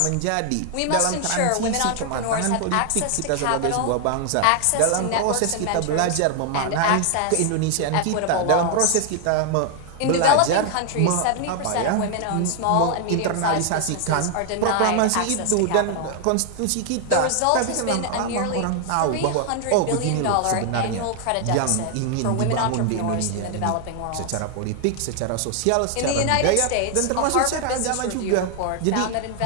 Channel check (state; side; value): different; both; correlation 0.00